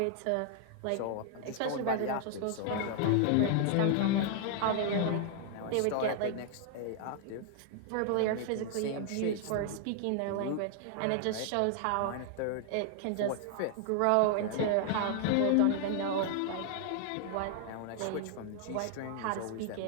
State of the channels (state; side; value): different; both; correlation 0.00